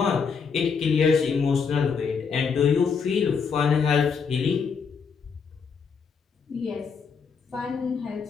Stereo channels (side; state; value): right; quieter; 5.8 dB